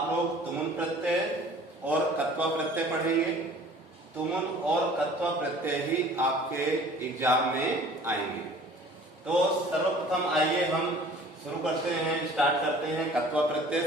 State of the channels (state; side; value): normal; both; correlation 0.49